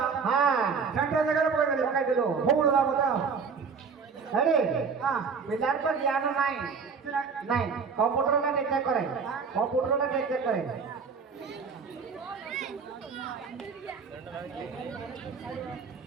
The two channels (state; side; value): quieter; left; 5.5 dB